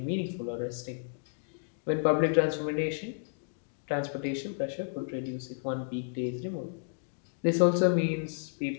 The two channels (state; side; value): silent; right; digital silence